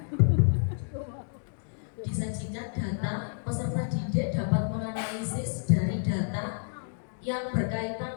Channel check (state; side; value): silent; right; digital silence